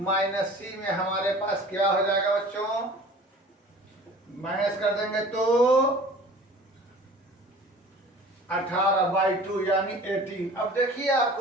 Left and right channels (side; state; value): both; normal; correlation 0.44